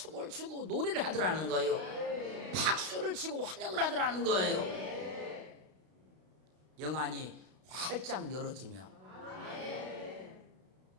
추고 노래를 하더라는 거예요. 박수를 치고 환영을 하더라는 거예요. 영안이 활짝 열어지면.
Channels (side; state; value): left; late; 32 ms